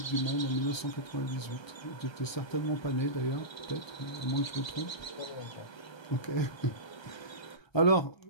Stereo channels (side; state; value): right; late; 1.3 ms